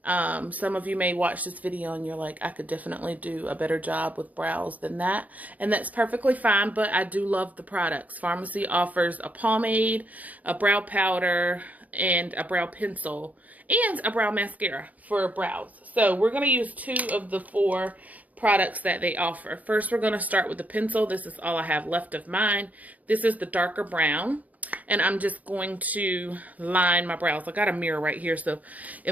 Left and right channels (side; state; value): left; late; 0.074 ms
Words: some of you may watch this video and you're like, I could definitely do a better job with brows than that. And that's perfectly fine, but I do love the products. Farmasi offers a pomade, a brow powder, and a brow pencil, and a brow mascara for brows. So we're going to use 2 of the 4 products that they offer. First, we're going to start with the pencil. This is all I have left of mine. This is the darker brown, and I'm just going to line my brows. I got a mirror right here, so